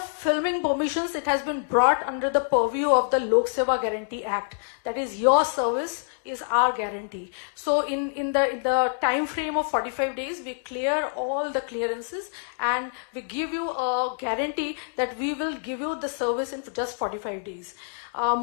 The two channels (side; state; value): right; silent; digital silence